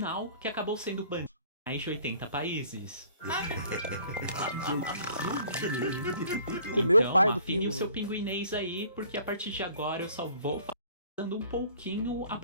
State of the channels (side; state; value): both; inverted; correlation -0.54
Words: que acabou sendo banido em mais de 80 países. Comeu Então, o pai do afine Pingo. o seu pinguinês aí, porque a partir de agora eu só vou falando um pouquinho a